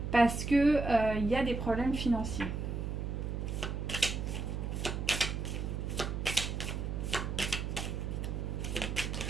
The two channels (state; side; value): noise; right; hum, 3 dB below the sound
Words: Parce que il y a des problèmes financiers.